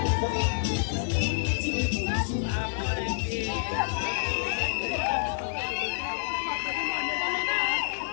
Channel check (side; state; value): right; silent; 59 dB below the other